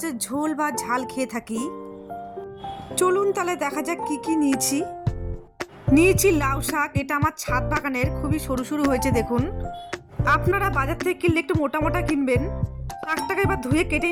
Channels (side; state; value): both; identical; correlation 1.00